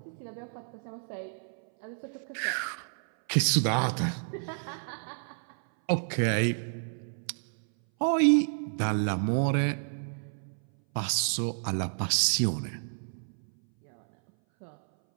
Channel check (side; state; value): left; silent; 58 dB below the other